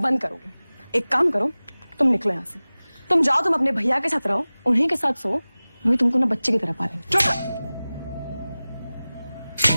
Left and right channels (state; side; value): inverted; both; correlation -0.98